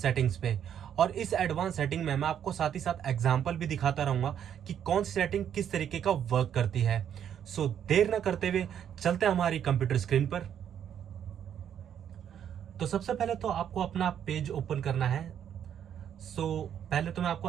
सेटिंग्स पे। और इस एडवांस सेटिंग में मैं आपको साथ ही साथ एग्जांपल भी दिखाता रहूंगा कि कौन सी सेटिंग किस तरीके का वर्क करती है। सो देर न करते हुए चलते हैं हमारी कंप्यूटर स्क्रीन पर। तो सबसे पहले तो आपको अपना पेज ओपन करना है। पहले तो मैं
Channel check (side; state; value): left; quieter; 9.2 dB